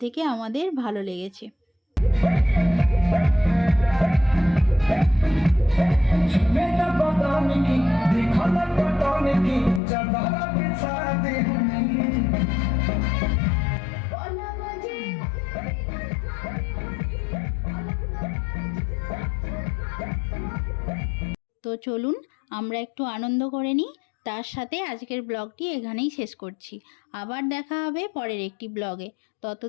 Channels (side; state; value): right; drops out; at 9.8 s